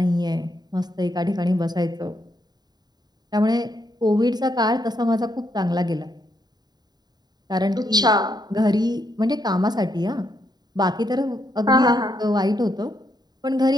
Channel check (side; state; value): left; late; 0.20 ms